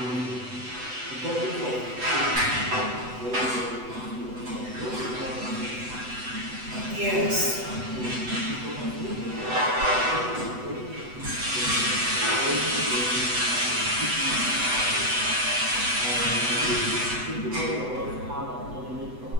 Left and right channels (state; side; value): late; left; 8.0 ms